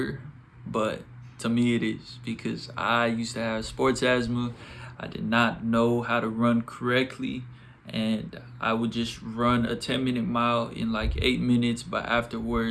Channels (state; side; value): identical; both; correlation 1.00